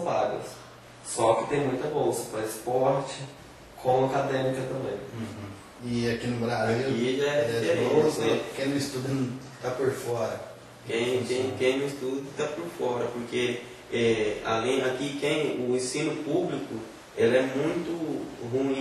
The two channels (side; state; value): both; identical; correlation 1.00